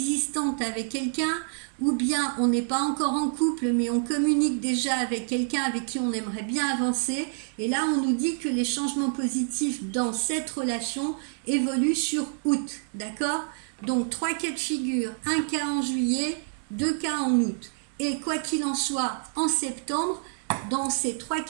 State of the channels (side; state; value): left; silent; 57 dB below the other